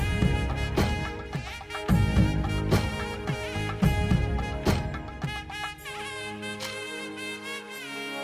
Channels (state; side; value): identical; both; correlation 1.00